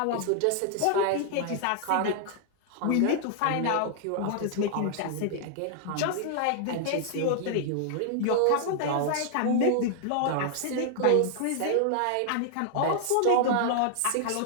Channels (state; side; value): different; both; correlation 0.00